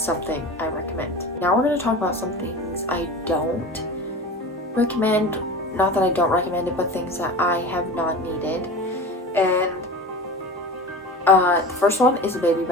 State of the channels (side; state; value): both; normal; correlation 0.33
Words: I recommend. Now we're going to talk about some things I don't recommend. Not that I don't recommend it, but things that I have not needed. And the first one is a baby